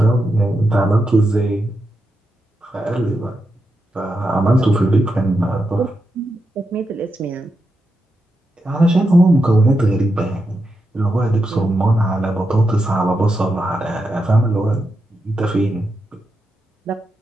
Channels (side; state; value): both; normal; correlation 0.86